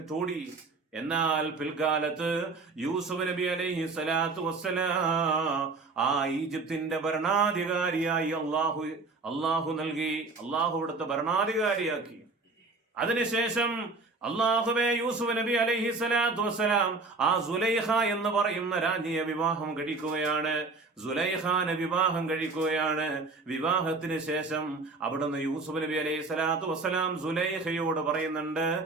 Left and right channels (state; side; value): quieter; left; 3.8 dB